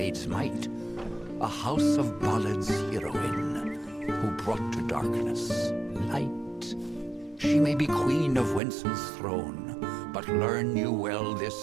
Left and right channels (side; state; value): left; drops out; at 8.6 s